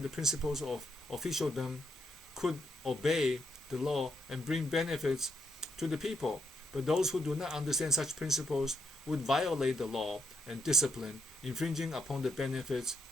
the principles of officialdom could obey the law and bring benefits to the people, but those who do not understand such principles would violate the law and discipline, infringing upon the benefits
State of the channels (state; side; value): normal; both; correlation 0.78